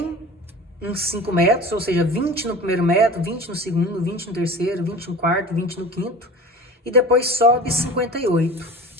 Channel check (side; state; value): both; normal; correlation 0.38